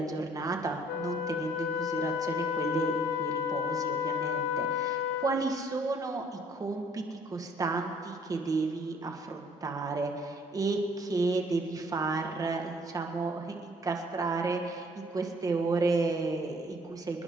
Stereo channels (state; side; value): normal; both; correlation 0.59